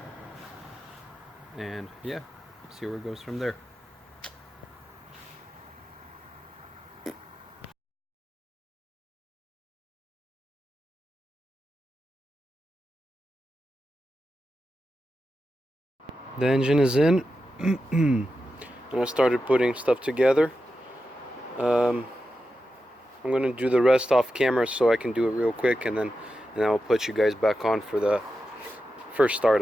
and yeah, see where it goes from there. The engine is in. And I started putting stuff together. I'm gonna do the rest off camera so I can do it real quick, and then I'll put you guys back on for the first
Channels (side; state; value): both; normal; correlation 0.90